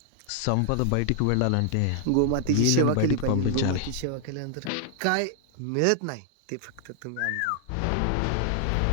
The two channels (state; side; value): different; both; correlation 0.00